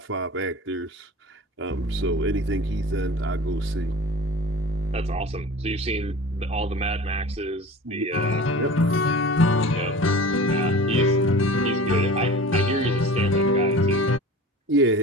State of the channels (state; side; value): normal; both; correlation 0.38